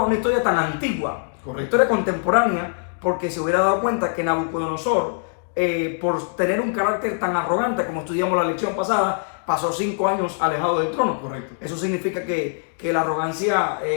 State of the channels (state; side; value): silent; right; digital silence